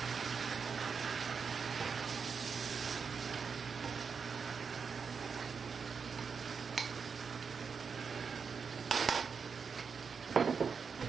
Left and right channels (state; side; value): quieter; left; 5.8 dB